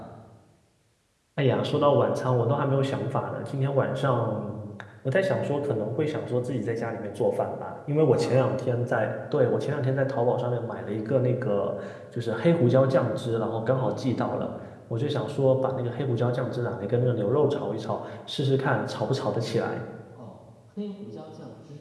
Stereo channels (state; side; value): identical; both; correlation 1.00